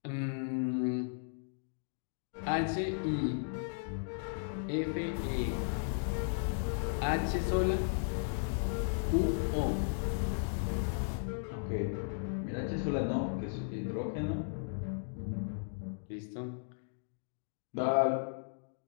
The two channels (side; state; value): right; silent; digital silence